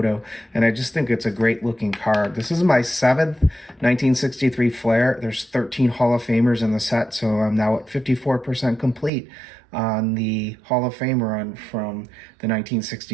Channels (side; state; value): left; drops out; at 9.1 s